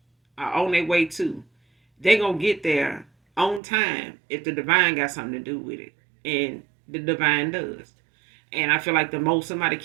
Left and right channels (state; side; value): drops out; left; at 3.6 s